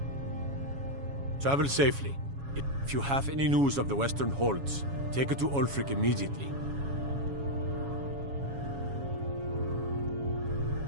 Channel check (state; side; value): late; left; 7.2 ms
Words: Travel safely. If you have any news of the Western Holds, take it to Ulfric immediately.